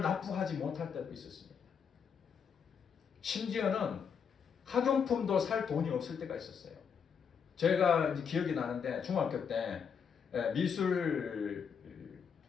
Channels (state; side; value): quieter; right; 6.8 dB